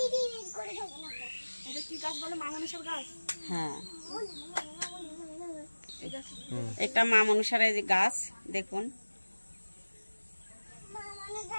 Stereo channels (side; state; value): both; inverted; correlation -1.00